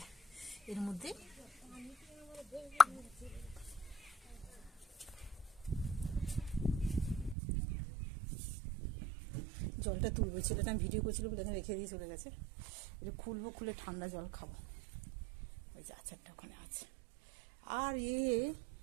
এর মধ্যে। জলটা তুলবো, ছেলেটা আমি ভিডিও করছিল বলে এখানে রেখে দিয়ে চলে গেছে। এটা খুলবো, খুলে ঠান্ডা জল খাবো। ওই যে আচারটা ওখানে আছে। আর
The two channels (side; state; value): left; drops out; at 7.4 s